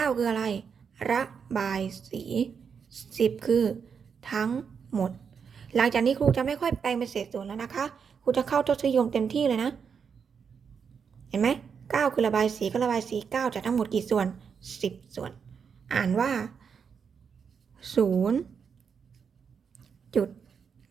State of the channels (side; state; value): left; quieter; 6.5 dB